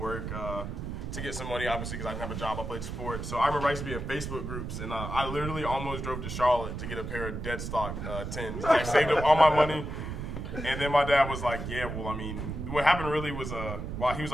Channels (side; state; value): right; noise; rumble, 6 dB below the sound